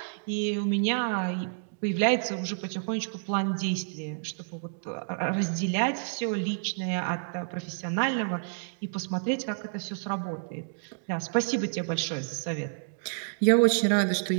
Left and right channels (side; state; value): left; silent; digital silence